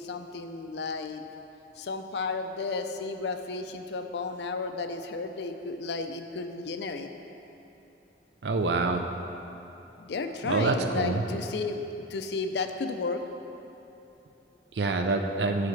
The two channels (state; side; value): normal; both; correlation 0.09